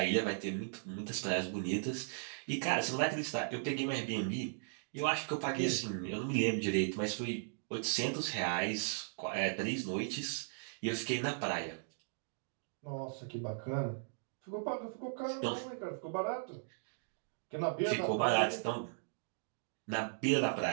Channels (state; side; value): silent; left; digital silence